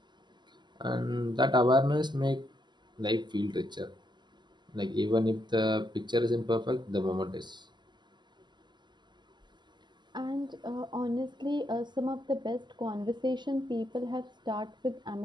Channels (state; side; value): late; left; 0.21 ms